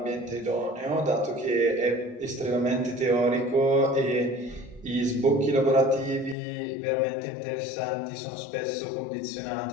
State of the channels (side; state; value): right; drops out; at 6.4 s